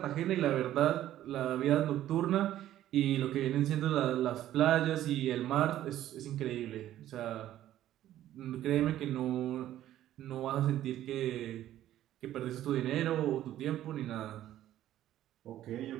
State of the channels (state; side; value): quieter; left; 12.9 dB